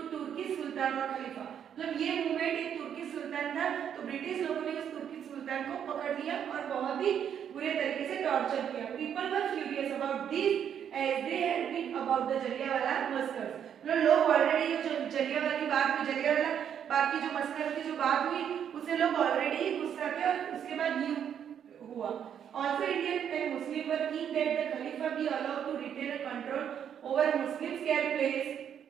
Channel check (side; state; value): left; quieter; 8.8 dB